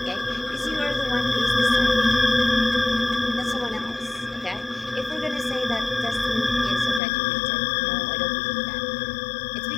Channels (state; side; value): drops out; right; at 7.0 s